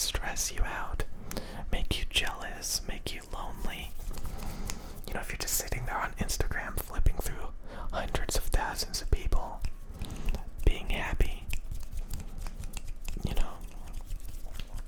stress you out, make you jealous, make you lonely, if you're just sitting there on Instagram flipping through hundreds of thousands of people being happy, you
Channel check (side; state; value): both; identical; correlation 1.00